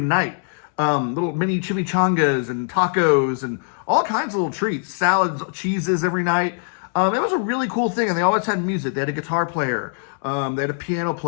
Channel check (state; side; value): silent; right; 64 dB below the other